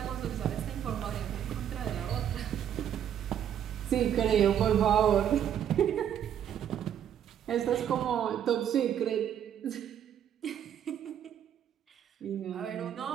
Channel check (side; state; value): left; quieter; 9.6 dB